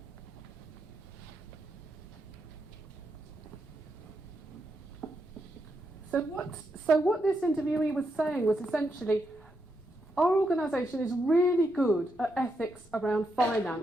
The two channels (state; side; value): normal; both; correlation 0.82